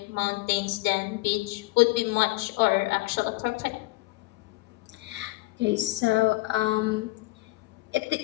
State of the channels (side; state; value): right; quieter; 21.5 dB